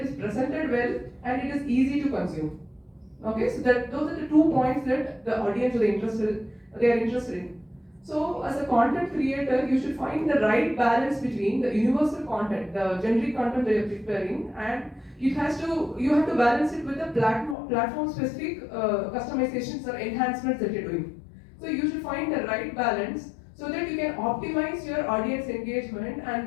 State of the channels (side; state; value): right; drops out; at 17.6 s